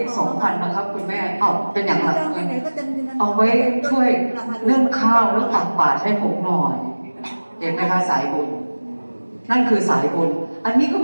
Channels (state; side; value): inverted; both; correlation -1.00